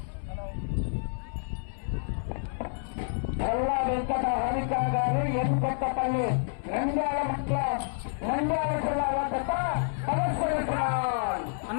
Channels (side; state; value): right; silent; 59 dB below the other